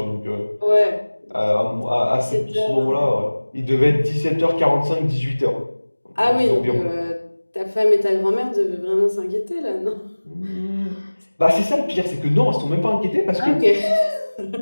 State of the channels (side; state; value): both; inverted; correlation -1.00